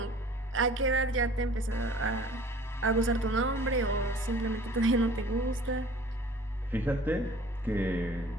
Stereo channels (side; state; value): both; normal; correlation 0.48